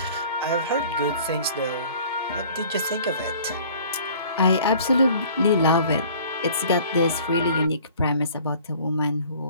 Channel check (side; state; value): both; inverted; correlation -0.50